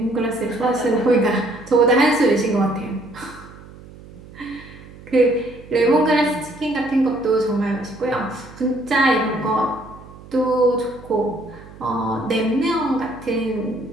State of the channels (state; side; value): noise; right; hum, 19 dB below the sound